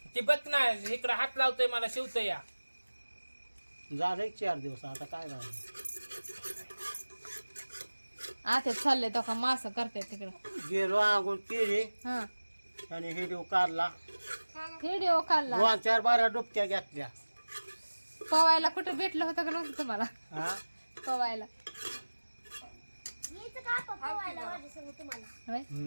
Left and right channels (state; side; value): inverted; both; correlation -1.00